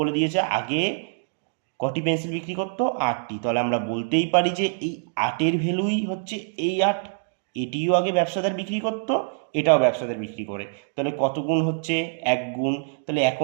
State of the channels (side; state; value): left; silent; digital silence